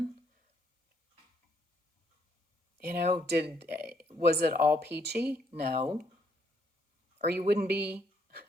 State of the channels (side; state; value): both; normal; correlation 0.71